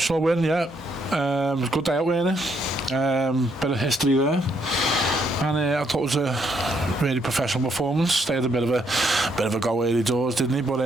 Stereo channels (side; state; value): both; normal; correlation 0.73